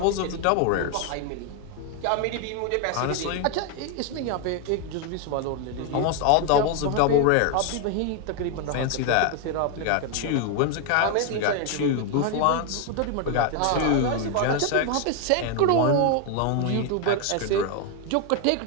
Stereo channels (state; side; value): different; both; correlation 0.01